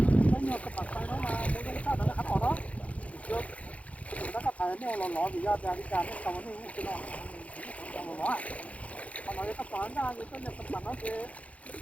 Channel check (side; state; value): right; late; 0.066 ms